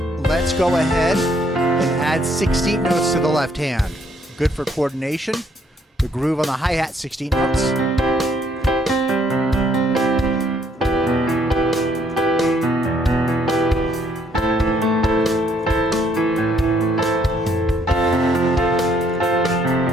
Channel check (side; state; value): both; normal; correlation 0.68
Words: let's go ahead and add 16th notes to the left hand. Good for coordination. The groove on the hi-hat, 16 notes.